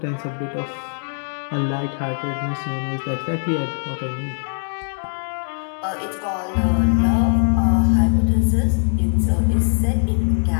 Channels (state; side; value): silent; right; 63 dB below the other